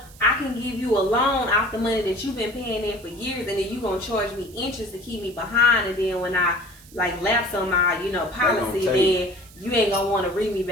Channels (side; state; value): right; noise; hiss, 23 dB below the sound